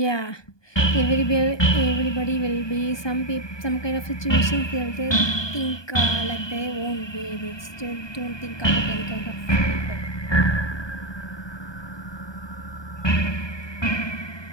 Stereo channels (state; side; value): late; right; 1.2 ms